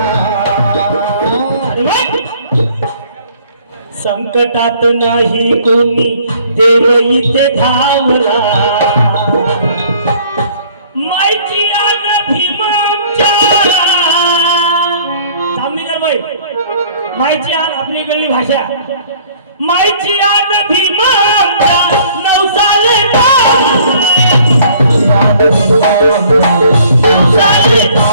संकटात नाही कोणी, देव इथे धावला. मायची आन भीमांच्या जांभेकर बाई, मायची आन आपली इकडली भाषा. मायची आन भीमांच्या नवसाले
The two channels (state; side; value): inverted; both; correlation -0.56